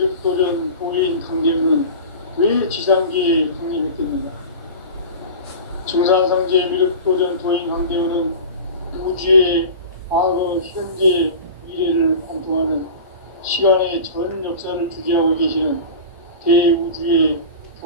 도인 강제우는 왜 지상계에 강림했겠느냐? 증산상제의 비륵도전 도인 강제우는 우주의 과거, 현재, 미래를 관통하는 시간의 전 역사를 주재하고 계시는 대우주의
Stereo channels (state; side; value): inverted; both; correlation -0.33